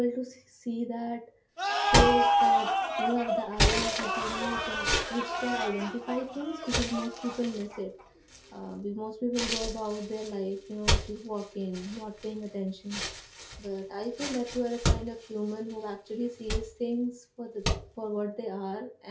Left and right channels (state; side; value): identical; both; correlation 1.00